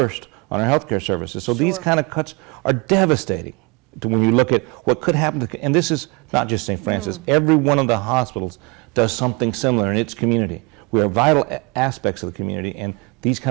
on our healthcare services. So these Sure. kind of cuts are devastating when you look at what could happen to, and this is not just St. Francis, every one of the hospitals does something similar in its community. We are vital aspects of the community, and these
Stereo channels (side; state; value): left; quieter; 28.9 dB